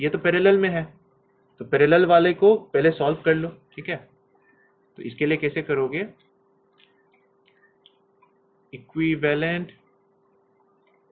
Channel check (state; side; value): identical; both; correlation 1.00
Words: ये तो पैरेलल में है, तो पैरेलल वाले को पहले सॉल्व कर लो, ठीक है। तो इसके लिए कैसे करोगे, इक्विवेलेंट